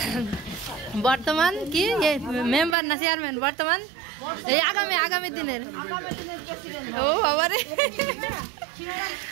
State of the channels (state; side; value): drops out; left; at 2.8 s